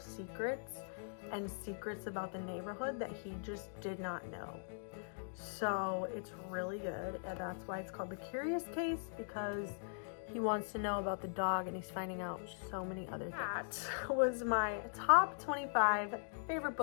and secrets about the neighborhood that he just did not know. So it's really good, and that's why it's called The Curious Case, because he wants to know about the dog and he's finding out so many other things. That was my top 25 favorite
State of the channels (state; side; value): silent; right; digital silence